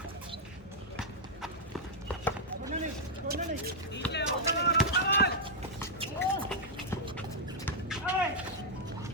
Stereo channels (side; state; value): both; normal; correlation -0.04